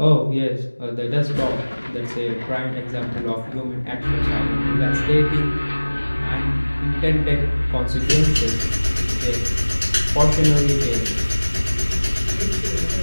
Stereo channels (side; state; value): both; inverted; correlation -1.00